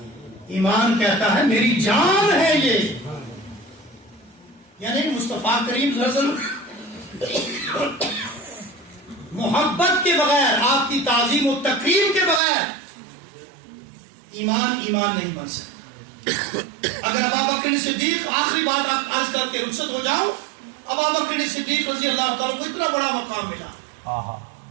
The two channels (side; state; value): left; drops out; at 12.4 s